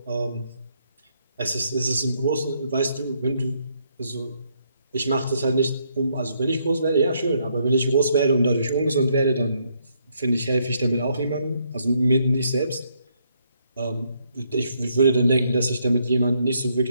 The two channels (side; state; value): both; inverted; correlation -0.73